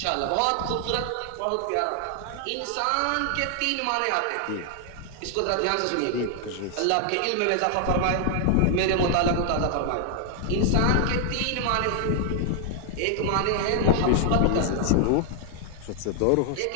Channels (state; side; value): different; both; correlation 0.00